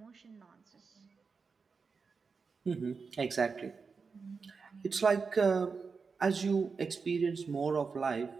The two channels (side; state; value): left; quieter; 5.0 dB